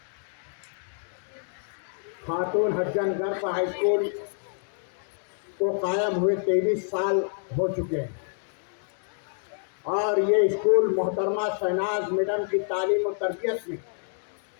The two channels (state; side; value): silent; right; 60 dB below the other